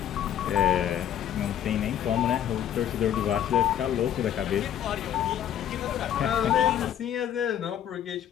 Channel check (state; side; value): quieter; right; 10.4 dB